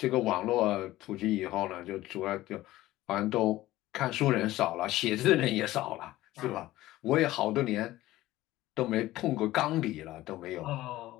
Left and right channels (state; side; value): quieter; right; 16.3 dB